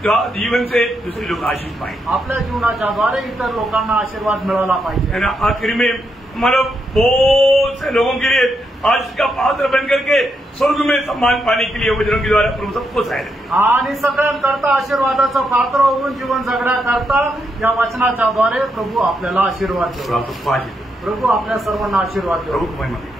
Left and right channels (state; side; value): normal; both; correlation 0.80